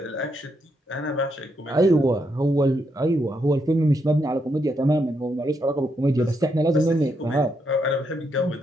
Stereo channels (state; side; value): normal; both; correlation 0.79